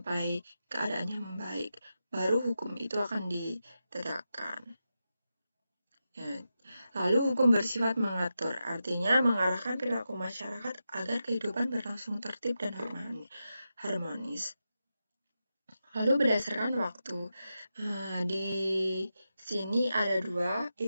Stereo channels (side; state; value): both; inverted; correlation -0.89